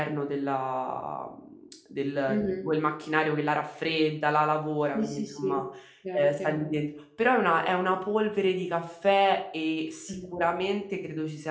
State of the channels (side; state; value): both; identical; correlation 1.00